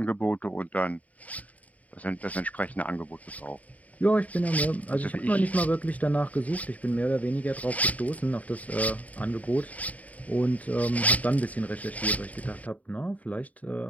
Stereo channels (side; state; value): right; late; 0.071 ms